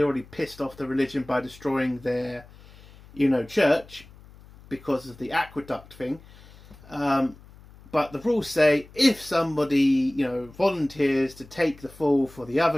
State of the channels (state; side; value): noise; left; hum, 22 dB below the sound